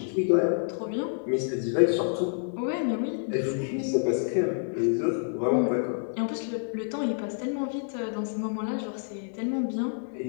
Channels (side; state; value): right; silent; 59 dB below the other